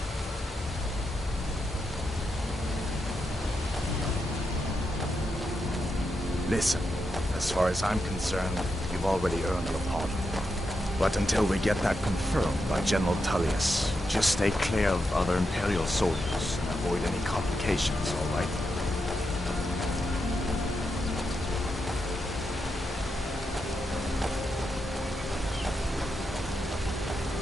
Listen, as far as I'm concerned, you've already earned your pardon. But until we get that confirmed by General Tullius, just stay clear of other Imperial soldiers and avoid any complications, all right?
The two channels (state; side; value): normal; both; correlation 0.85